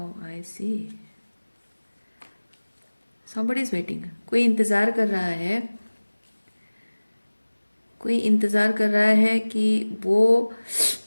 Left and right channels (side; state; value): both; inverted; correlation -1.00